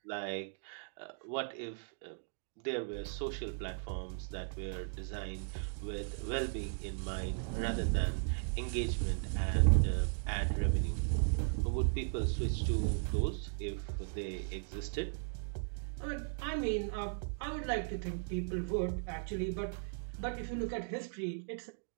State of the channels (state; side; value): silent; left; digital silence